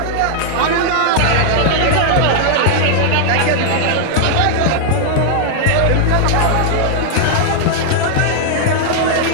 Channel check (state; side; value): different; both; correlation -0.01